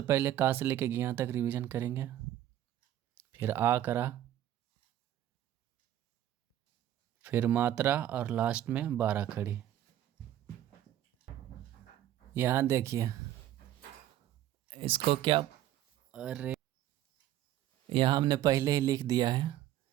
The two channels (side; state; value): left; quieter; 12.4 dB